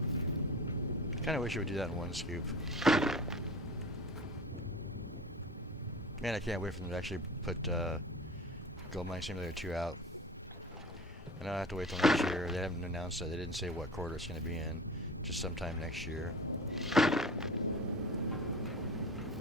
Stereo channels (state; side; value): normal; both; correlation 0.36